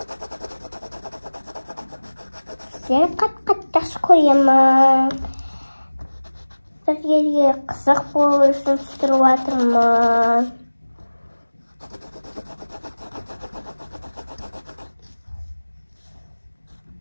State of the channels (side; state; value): both; inverted; correlation -1.00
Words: Сені қатты жақсы көремін. Сіздерге қызық болу үшін түсіріп жатырмын.